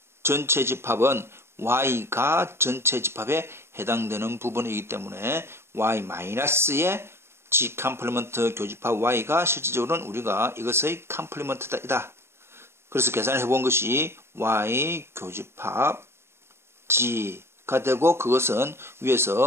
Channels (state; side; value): late; left; 0.12 ms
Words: 전체 집합은 y가 전체 집합에 해당되는 부분이기 때문에 y-의 G 컴플리먼트 교집합 y가 실질적으로는 우리가 이것의 컴플리먼트이다. 그래서 계산을 해본 것이 y 교집합 G가 되고, 그것은